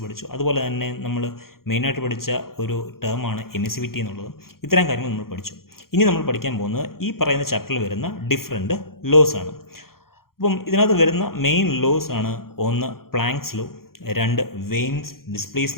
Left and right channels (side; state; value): right; late; 0.93 ms